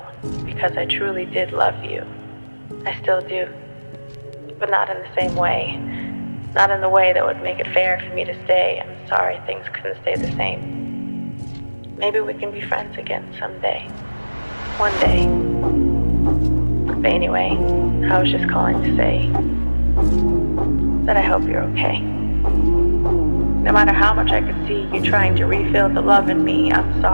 because I truly did love you. I still do, but not in the same way. Not in the way that would make it fair for me to stay. I'm sorry things couldn't stay the same. Maybe we can be friends again someday. One day. But anyway, I was just calling to say that I hope you're okay. No matter how much I could see you trying to refill the love in me, I'm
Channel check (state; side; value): inverted; both; correlation -1.00